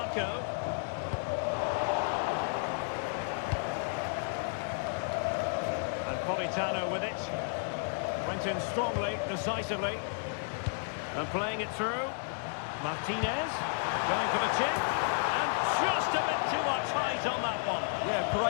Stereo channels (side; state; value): right; silent; digital silence